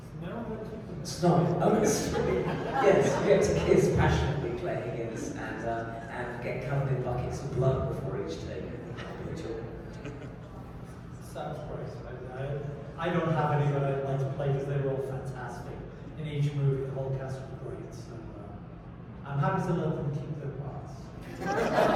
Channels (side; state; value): both; identical; correlation 1.00